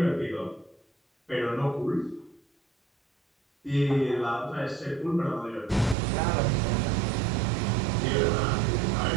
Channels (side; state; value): left; drops out; at 6.0 s